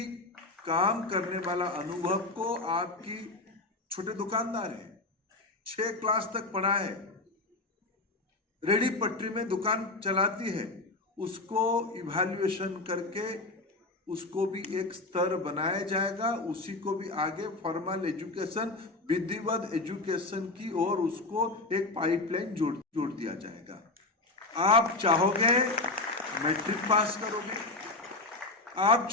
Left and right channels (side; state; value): right; quieter; 3.1 dB